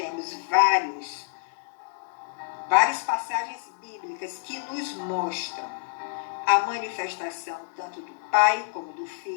várias passagens bíblicas que nos mostram a manifestação tanto do Pai, como do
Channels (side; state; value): right; silent; digital silence